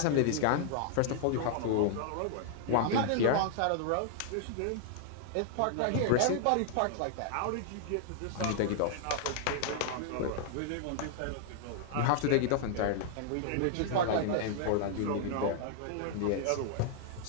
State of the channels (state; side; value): different; both; correlation -0.01